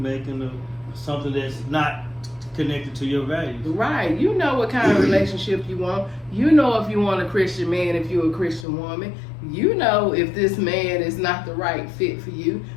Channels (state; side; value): drops out; right; at 8.7 s